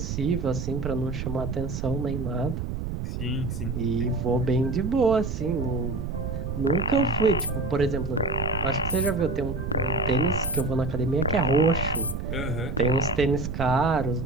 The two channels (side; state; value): right; noise; rumble, 4 dB below the sound